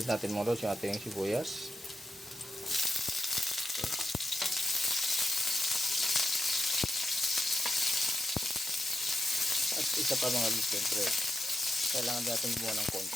natin mga lods yung ating sibuyas. At isa pa mga lods, siyempre kailangan natin gumawa ng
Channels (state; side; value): normal; both; correlation 0.88